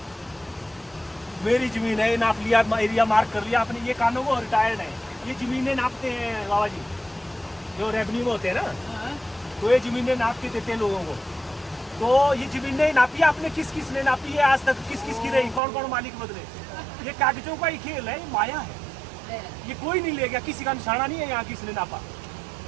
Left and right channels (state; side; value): drops out; left; at 15.6 s